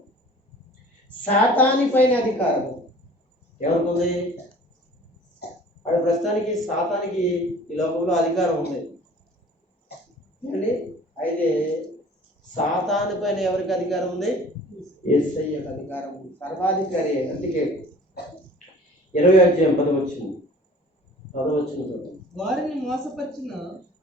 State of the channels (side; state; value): both; normal; correlation 0.48